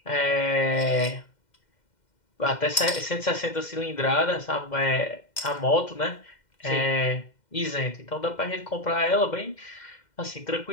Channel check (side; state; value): right; late; 2.1 ms